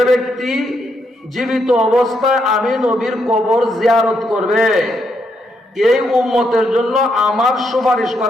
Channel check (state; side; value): normal; both; correlation 0.78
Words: ব্যক্তি জীবিত অবস্থায় আমি নবীর কবর জিয়ারত করবে, এই উম্মতের জন্য আমার সুপারিশ